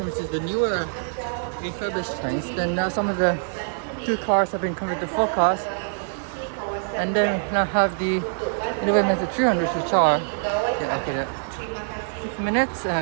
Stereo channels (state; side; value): silent; left; digital silence